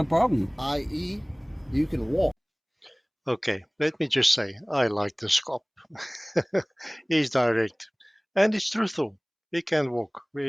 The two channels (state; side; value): identical; both; correlation 1.00